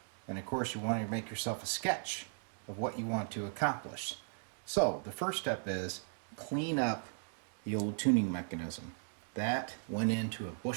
And of course, you want to make yourself a sketch of what you want to accomplish. So, the first step is clean up the old tuning mechanism. That went into a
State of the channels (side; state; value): left; silent; digital silence